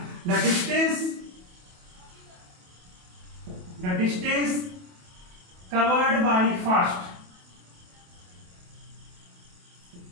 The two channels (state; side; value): late; left; 28 ms